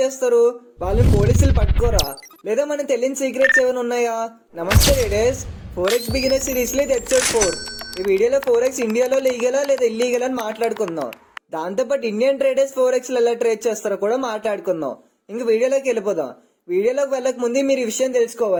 వాళ్ళని పోలీసులు పట్టుకోరా? లేదా మనకు తెలియని సీక్రెట్స్ ఏమైనా ఉన్నాయా? నమస్తే ట్రేడర్స్, ఫోరెక్స్ బిగినర్ సిరీస్ లో ఇది ఎపిసోడ్ 4. ఈ వీడియోలో ఫోరెక్స్ ఇండియాలో లీగలా లేదా ఇల్లీగల్ అని మాట్లాడుకుందాం. దాంతోపాటు ఇండియన్ ట్రేడర్స్ ఫోరెక్స్ ఎలా ట్రేడ్ చేస్తారో కూడా మాట్లాడుకుందాం. ఇంక వీడియోలోకి వెళ్ళిపోదాం. వీడియోలోకి వెళ్ళక ముందే మీరు ఈ విషయం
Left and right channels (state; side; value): identical; both; correlation 1.00